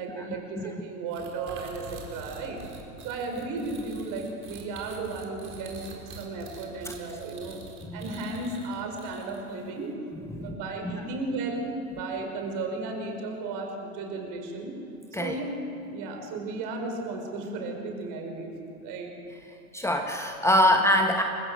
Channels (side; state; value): both; normal; correlation 0.32